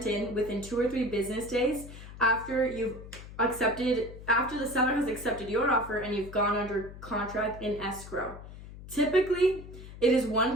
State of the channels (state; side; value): noise; left; hum, 14 dB below the sound